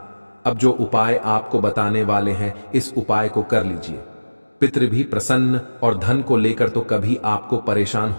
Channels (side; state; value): both; inverted; correlation -1.00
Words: अब जो उपाय आपको बताने वाले हैं, इस उपाय को कर लीजिए। पितृ भी प्रसन्न और धन को लेकर तो कभी आपको परेशान